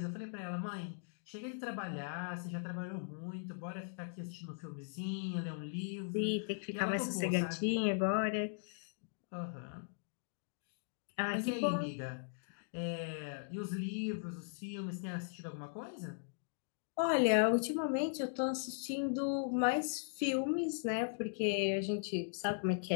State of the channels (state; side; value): silent; right; digital silence